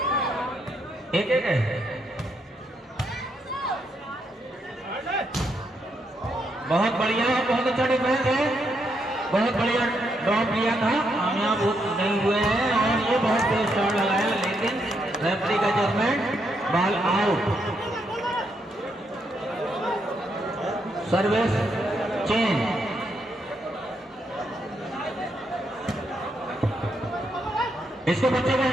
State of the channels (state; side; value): normal; both; correlation 0.78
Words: एक है। बहुत बढ़िया, बहुत अच्छा डिफेंस है, बहुत बढ़िया ड्रॉप लिया था, कामयाब नहीं हुए हैं। और ये बहुत तेज शॉट लगाया, लेकिन रेफरी का judgement, ball out. Service change. इसको बच्चे को